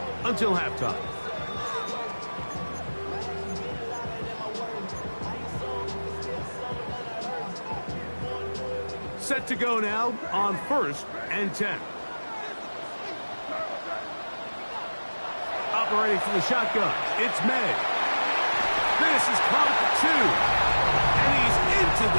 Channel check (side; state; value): both; inverted; correlation -1.00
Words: until halftime. Set to go now on 1st and 10. Operating from the shotgun, it's May. This is caught for 2. And he's into